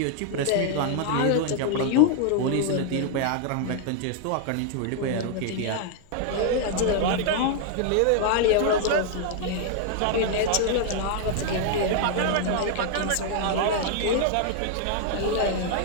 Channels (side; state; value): both; different; correlation 0.00